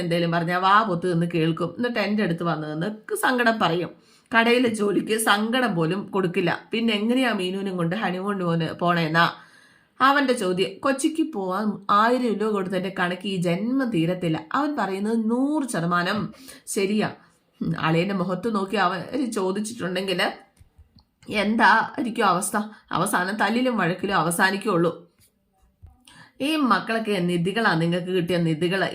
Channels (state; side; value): identical; both; correlation 1.00